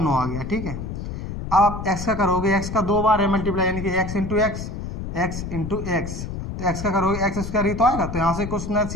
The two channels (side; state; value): left; noise; rumble, 7 dB below the sound